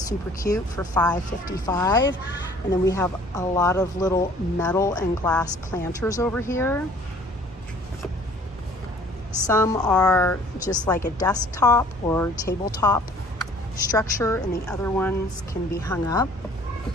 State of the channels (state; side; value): normal; both; correlation 0.53